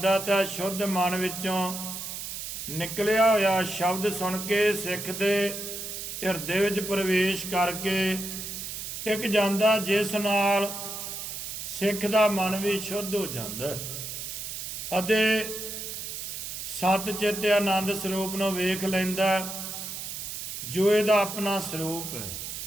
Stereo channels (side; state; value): right; noise; hiss, 7 dB below the sound